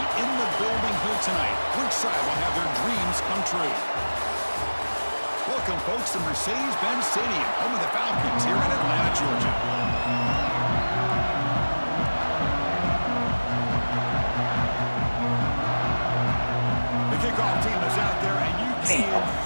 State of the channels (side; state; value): both; inverted; correlation -1.00